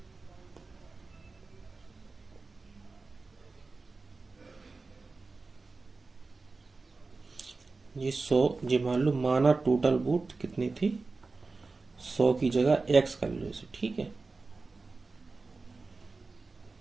ये 100, ये मान लो माना टोटल वोट कितनी थी, 100 की जगह x कर लो इसे। ठीक है,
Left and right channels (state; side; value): quieter; left; 3.9 dB